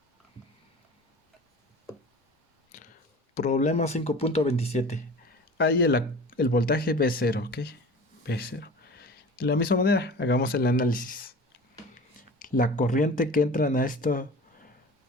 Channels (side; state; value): both; normal; correlation 0.38